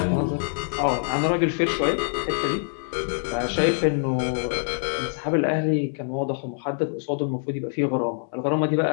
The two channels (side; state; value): right; silent; digital silence